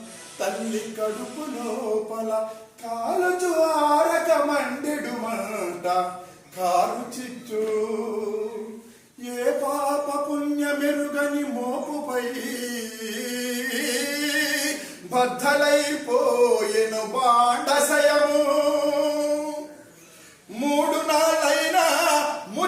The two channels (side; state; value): both; identical; correlation 1.00